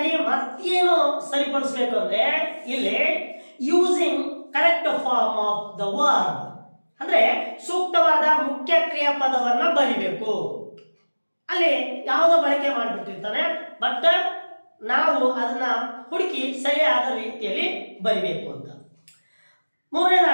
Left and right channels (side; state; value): both; inverted; correlation -1.00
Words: ಮತ್ತೇನು ಸರಿಪಡಿಸಬೇಕು ಅಂದ್ರೆ, ಇಲ್ಲಿ using correct form of the verb ಅಂದ್ರೆ ಸೂಕ್ತವಾದ ಮುಖ್ಯ ಕ್ರಿಯಾಪದವನ್ನ ಬರಿಬೇಕು. ಅಲ್ಲಿ ಯಾವುದೋ ಬಳಕೆ ಮಾಡಿಬಿಟ್ಟಿರ್ತಾನೆ, ಬಟ್ ನಾವು ಅದನ್ನ ಹುಡುಕಿ ಸರಿಯಾದ ರೀತಿಯಲ್ಲಿ ಬರಿಬೇಕು ಅಂತ.